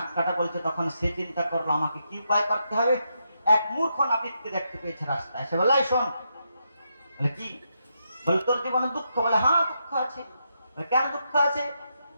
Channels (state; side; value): inverted; both; correlation -0.82